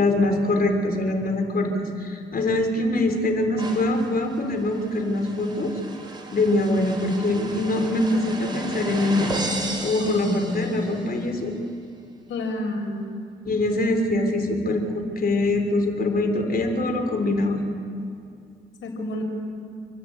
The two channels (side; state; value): both; normal; correlation 0.62